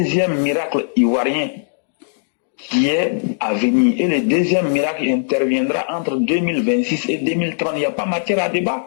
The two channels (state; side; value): silent; right; digital silence